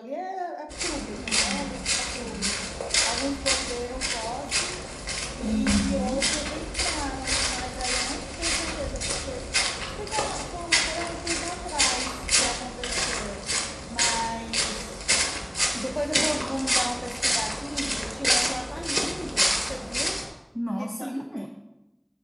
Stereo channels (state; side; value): identical; both; correlation 1.00